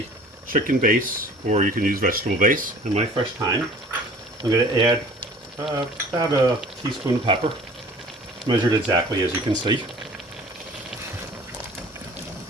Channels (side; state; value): both; normal; correlation 0.48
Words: chicken base, or you can use vegetable base, and my fresh thyme. I'm going to add about a teaspoon of pepper, measured exactly as you can see.